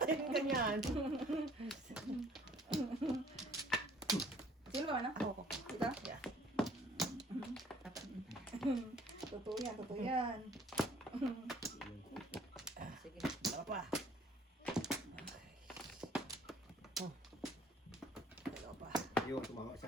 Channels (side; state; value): both; normal; correlation 0.57